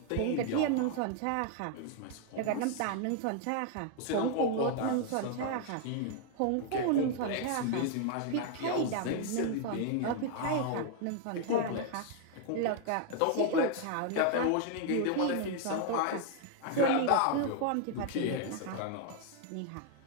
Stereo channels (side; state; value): both; different; correlation 0.00